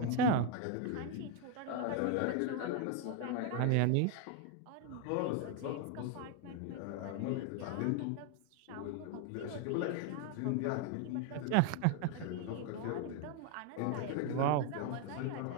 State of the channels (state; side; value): different; both; correlation 0.01